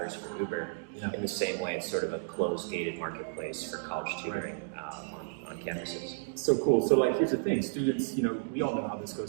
for Uber. Yeah. In the same way, it's sort of a closed, gated marketplace for college tutoring on campuses. So cool. So like, here's the thing, students, we all know how this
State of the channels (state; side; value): silent; left; digital silence